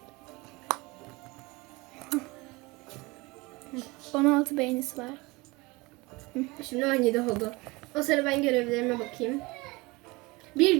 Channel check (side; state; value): left; quieter; 23.9 dB